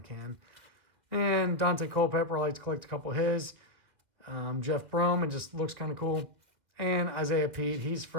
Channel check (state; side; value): late; left; 2.3 ms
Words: can. And Dante Culpepper, I like to collect a couple of his. Jeff Brome, it just looks kind of cool. And Isaiah Pete, he's